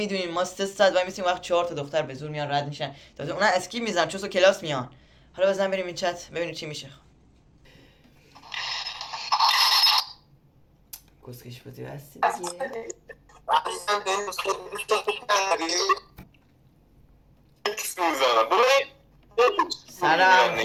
ما 3 ساعت وای میسیم وقت 4 تا دختر به زور میان رد میشن. تازه اونا اسکیپ میزنن چون کلاس میان. حالا بزن بریم این چت ببینیم چی میشه. کسکش بودی هستی دیگه. سلام،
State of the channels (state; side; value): identical; both; correlation 1.00